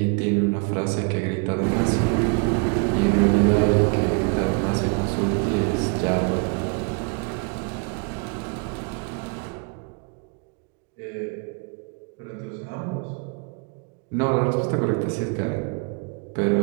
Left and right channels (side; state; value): left; quieter; 33.7 dB